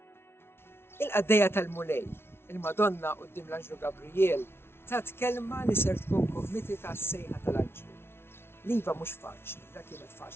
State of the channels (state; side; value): late; right; 0.12 ms